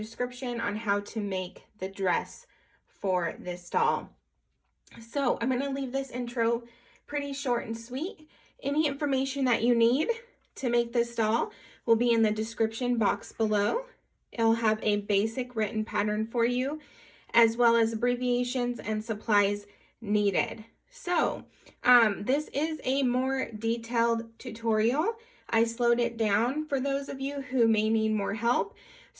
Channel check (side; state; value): both; identical; correlation 1.00